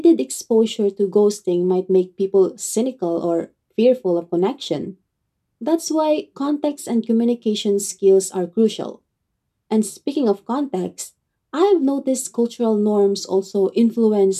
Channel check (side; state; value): both; identical; correlation 1.00